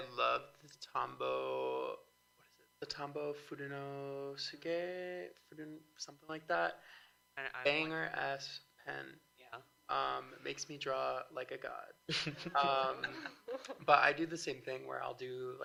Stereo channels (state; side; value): identical; both; correlation 1.00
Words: love the Tombow, what is it? The Tombow Furunosuke, something like that. Banger ass pen. It makes me draw like a god. But I do the same thing where I'll do,